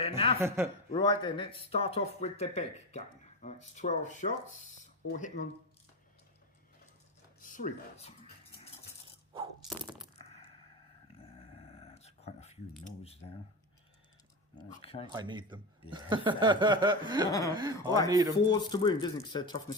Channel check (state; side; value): normal; both; correlation 0.20